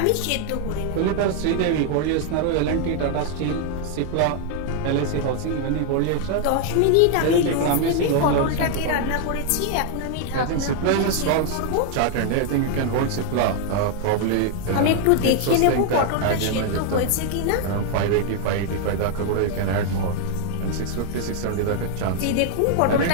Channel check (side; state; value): both; different; correlation 0.00